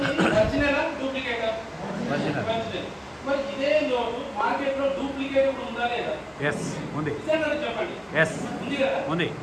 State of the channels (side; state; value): both; identical; correlation 1.00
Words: ఒరిజినల్ డూప్లికేటా? ఒరిజినల్. మరి ఇదే లోటు మార్కెట్ లో డూప్లికేట్ కూడా ఉందా లేదా? ఉంది. చెప్పండి, ఉంది కదా. ఉంది.